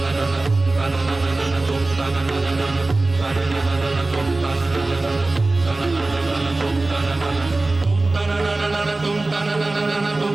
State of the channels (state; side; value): quieter; left; 3.1 dB